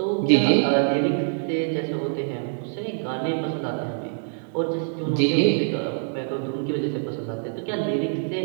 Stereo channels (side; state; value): left; silent; 59 dB below the other